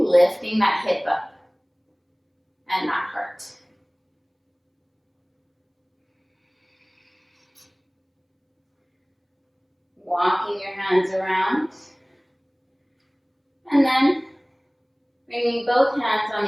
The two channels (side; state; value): both; identical; correlation 1.00